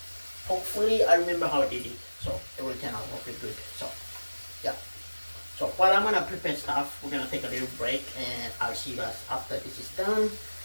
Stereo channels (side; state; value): both; inverted; correlation -1.00